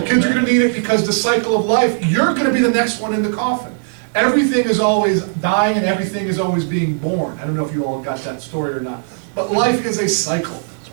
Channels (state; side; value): silent; left; digital silence